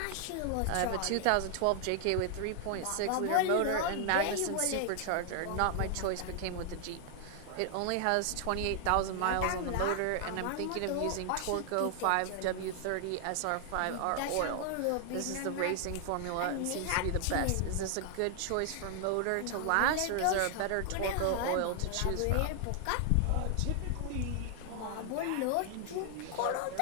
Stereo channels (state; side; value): different; both; correlation 0.00